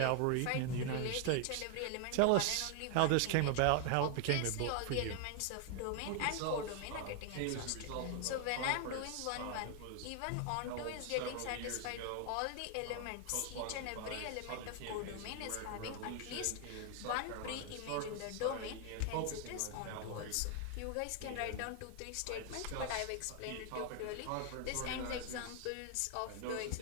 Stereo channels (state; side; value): different; both; correlation 0.00